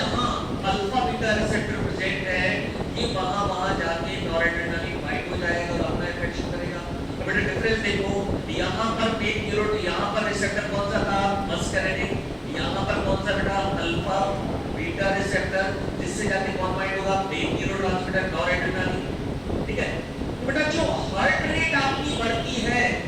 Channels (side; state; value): both; identical; correlation 1.00